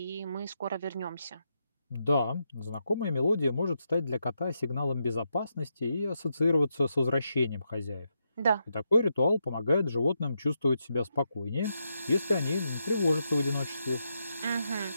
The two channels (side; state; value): both; inverted; correlation -0.83